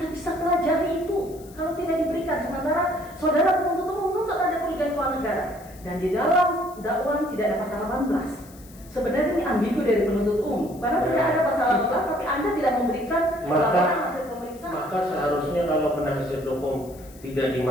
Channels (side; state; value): left; noise; hiss, 23 dB below the sound